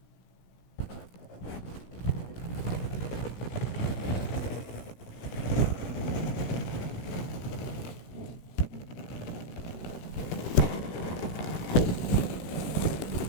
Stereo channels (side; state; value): right; late; 17 ms